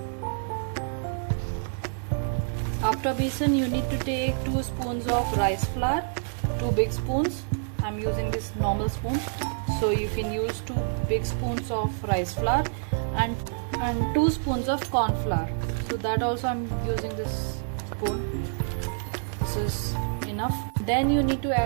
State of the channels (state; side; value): silent; left; 58 dB below the other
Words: After besan you need to take 2 spoons of rice flour, 2 big spoons. I'm using this normal spoon. So you can use 2 big spoons of rice flour and 2 spoons of corn flour. So that also I'm using this spoon. This is enough. Then you need to